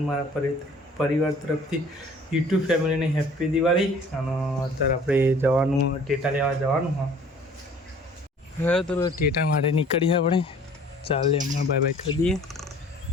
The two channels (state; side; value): normal; both; correlation 0.51